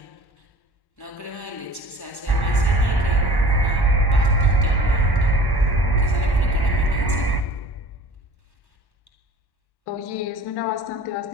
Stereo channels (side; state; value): right; late; 1.1 ms